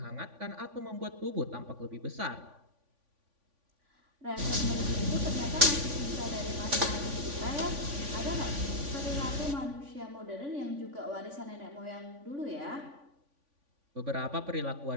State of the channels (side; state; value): left; late; 3.5 ms